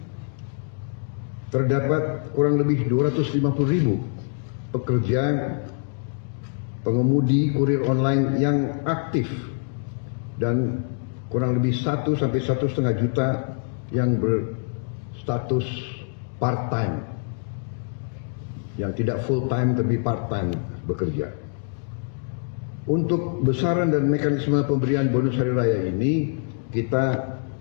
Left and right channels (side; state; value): right; silent; 62 dB below the other